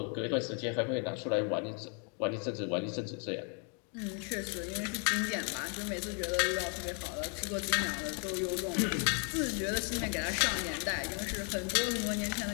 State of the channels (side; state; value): right; quieter; 39.9 dB